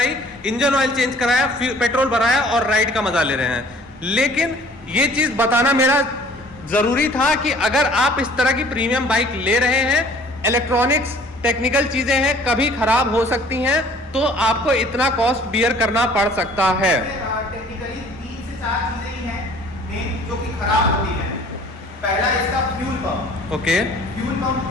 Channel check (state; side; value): normal; both; correlation 0.53